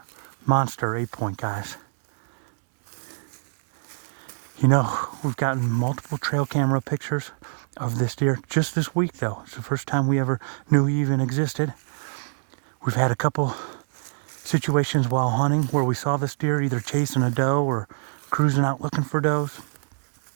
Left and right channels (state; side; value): silent; left; 62 dB below the other